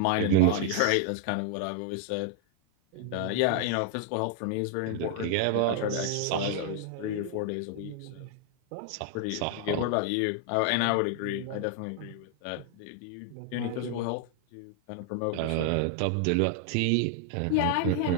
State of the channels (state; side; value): different; both; correlation 0.00